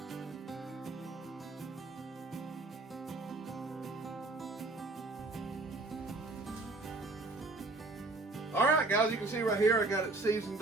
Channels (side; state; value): left; quieter; 3.2 dB